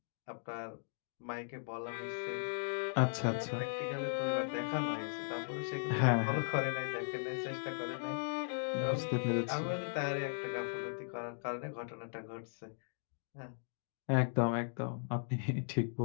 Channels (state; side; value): silent; right; digital silence